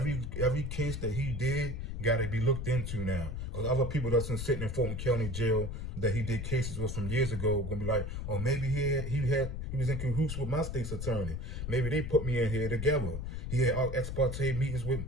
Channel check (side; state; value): left; noise; rumble, 5 dB below the sound